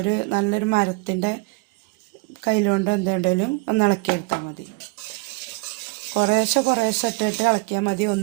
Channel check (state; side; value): quieter; left; 28.0 dB